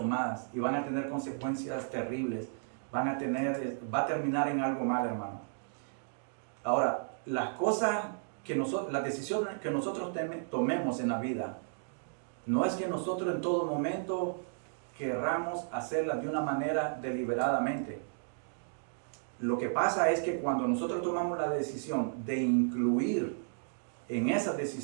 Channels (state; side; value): silent; left; digital silence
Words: y van a tener consecuencias terribles, va a terminar en algo mal, hermano. Ahora, las decisiones que nosotros tomemos en la vida, no es que nosotros en todo momento querramos hacerlas de una manera deliberadamente. Lo que pasa es que cuando nosotros tomamos la decisión de incluir en esas